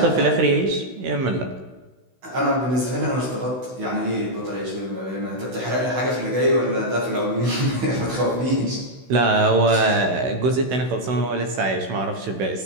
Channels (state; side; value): late; left; 16 ms